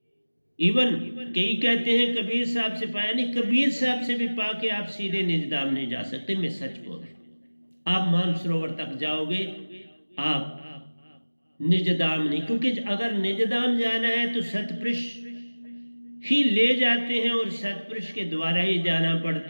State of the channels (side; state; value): both; inverted; correlation -1.00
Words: इवन कई कहते हैं कबीर साहब से पाया, नहीं, कबीर साहब से भी पाके आप सीधे निजधाम नहीं जा सकते। मैं सच बोल रहा हूं, आप मानसरोवर तक जाओगे, आप निजधाम नहीं। क्योंकि अगर निजधाम जाना है तो सतपुरुष ही ले जाते हैं और सतपुरुष के द्वारा ही जाना